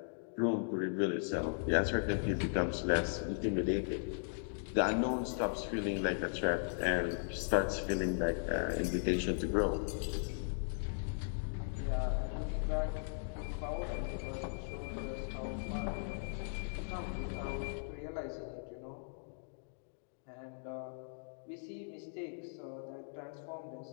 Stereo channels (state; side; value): silent; right; digital silence